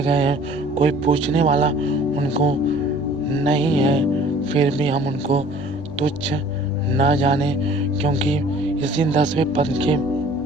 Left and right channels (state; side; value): normal; both; correlation 0.50